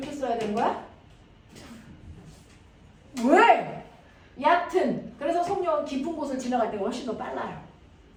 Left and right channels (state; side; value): identical; both; correlation 1.00